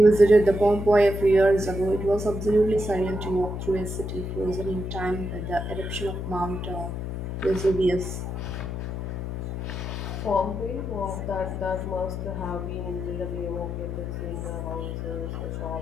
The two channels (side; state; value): left; noise; hum, 5 dB below the sound